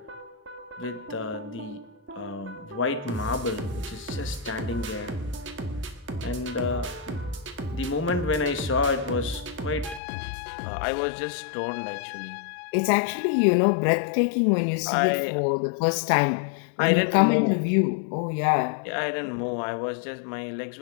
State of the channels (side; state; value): right; drops out; at 10.0 s